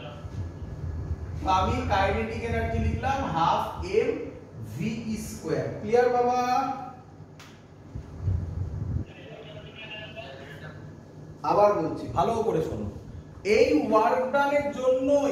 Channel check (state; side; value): identical; both; correlation 1.00